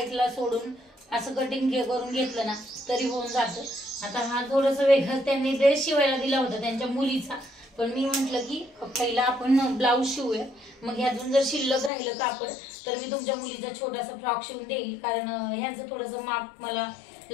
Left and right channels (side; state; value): right; drops out; at 11.9 s